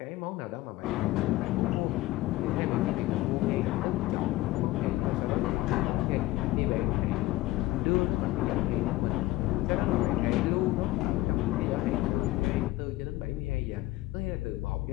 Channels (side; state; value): right; quieter; 17.7 dB